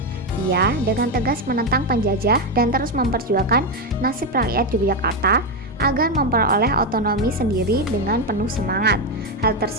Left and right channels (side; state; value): both; normal; correlation 0.08